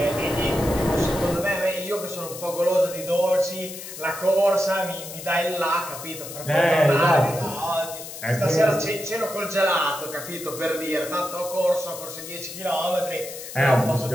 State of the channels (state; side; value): noise; left; hiss, 11 dB below the sound